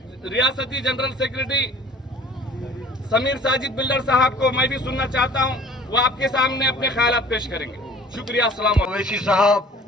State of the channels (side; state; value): both; normal; correlation 0.49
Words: रियासती general secretary Sameer Sajid builder साहब को मैं भी सुनना चाहता हूं, वो आपके सामने अपने ख्यालात पेश करेंगे। शुक्रिया। अस्सलाम ओवैसी साहब,